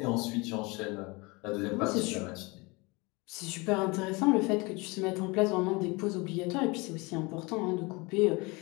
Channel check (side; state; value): right; quieter; 26.1 dB